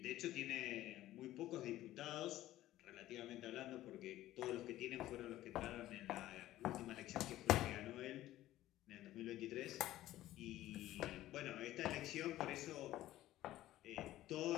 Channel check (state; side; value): quieter; right; 14.7 dB